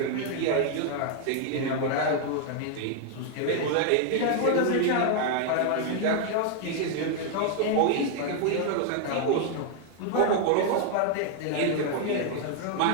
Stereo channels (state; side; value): different; both; correlation 0.00